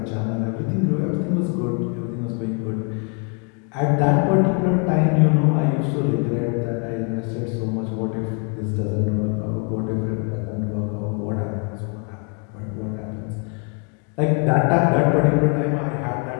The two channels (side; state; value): right; quieter; 38.3 dB